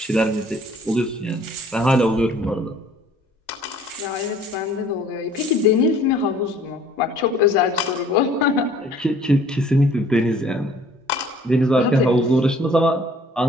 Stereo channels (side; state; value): both; normal; correlation 0.55